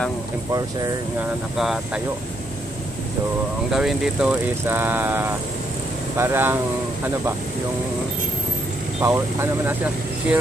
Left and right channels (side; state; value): both; normal; correlation 0.75